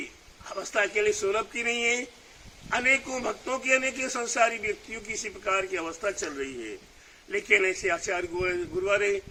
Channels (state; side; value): identical; both; correlation 1.00